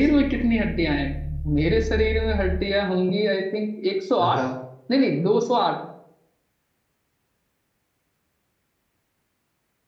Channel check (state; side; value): identical; both; correlation 1.00